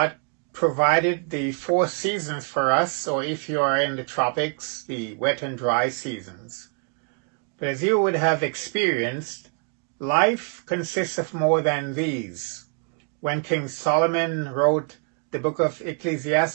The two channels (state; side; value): quieter; left; 38.9 dB